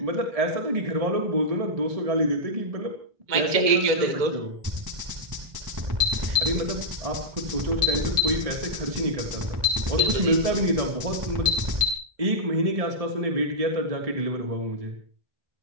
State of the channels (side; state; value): left; late; 1.7 ms